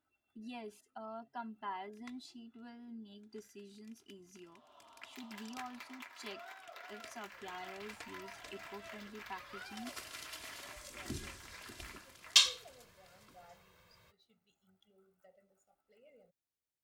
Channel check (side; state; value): both; identical; correlation 1.00